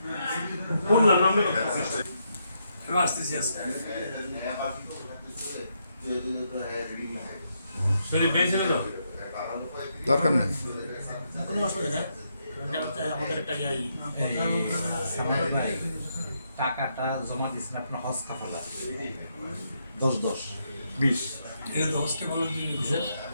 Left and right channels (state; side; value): inverted; both; correlation -0.79